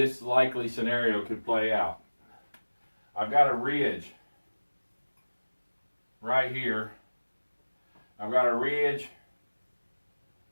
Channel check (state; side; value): inverted; both; correlation -1.00